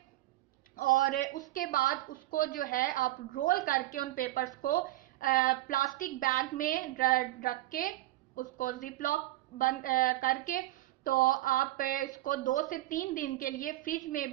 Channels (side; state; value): left; quieter; 16.4 dB